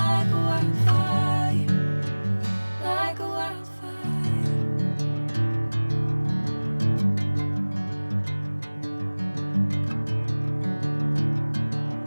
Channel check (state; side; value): inverted; both; correlation -1.00